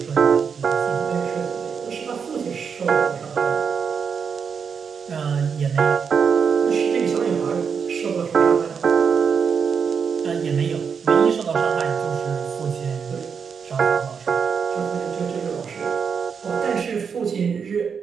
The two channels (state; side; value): quieter; left; 6.4 dB